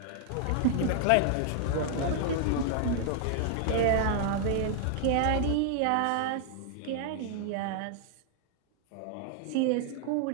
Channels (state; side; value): different; both; correlation -0.01